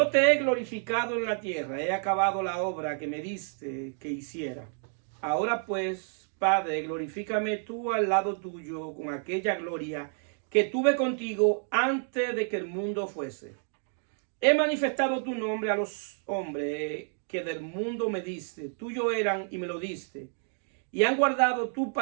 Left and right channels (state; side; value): silent; left; 58 dB below the other